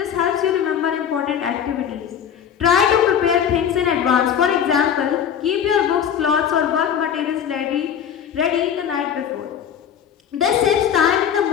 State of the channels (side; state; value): right; quieter; 8.6 dB